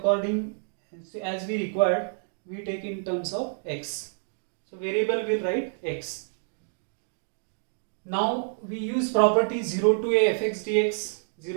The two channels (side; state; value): left; silent; digital silence